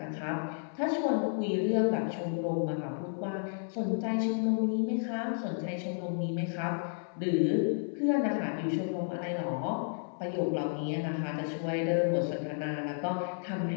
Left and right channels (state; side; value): silent; right; 56 dB below the other